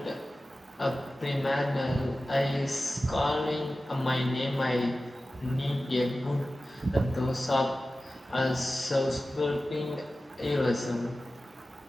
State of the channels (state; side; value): normal; both; correlation 0.95